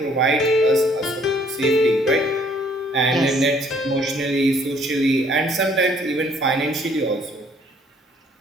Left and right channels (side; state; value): both; normal; correlation 0.62